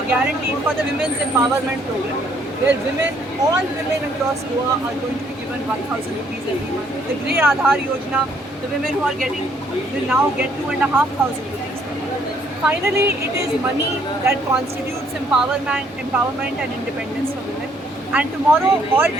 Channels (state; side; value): normal; both; correlation 0.66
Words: guarantee for the Women's Empowerment Program, where all women across Goa are going to be given 1,000 rupees every month. The Grey Aadhaar Yojana, the women who are getting will now get 2,500 rupees per month. Finally, it is money that constitutes empowerment and independence for women. And tomorrow, all